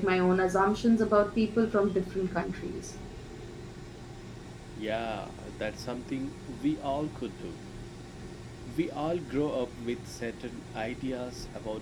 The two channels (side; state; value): both; identical; correlation 1.00